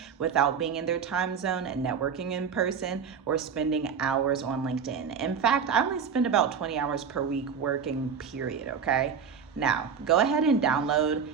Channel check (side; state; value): left; quieter; 6.7 dB